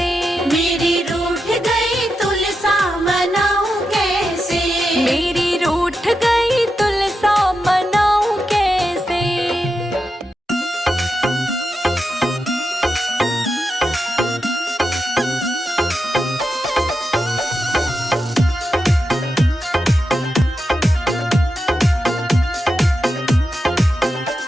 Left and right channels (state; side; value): normal; both; correlation 0.88